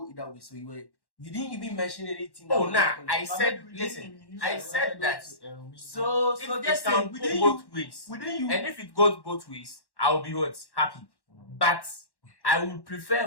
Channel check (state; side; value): late; right; 1.1 ms